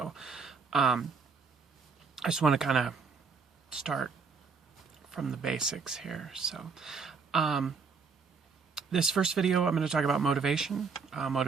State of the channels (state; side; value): quieter; left; 5.1 dB